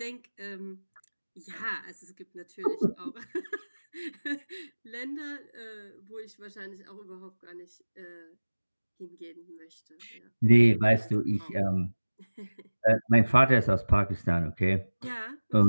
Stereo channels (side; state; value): both; inverted; correlation -1.00